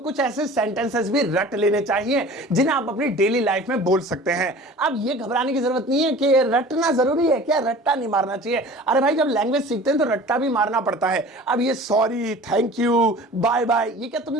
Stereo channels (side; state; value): both; normal; correlation 0.42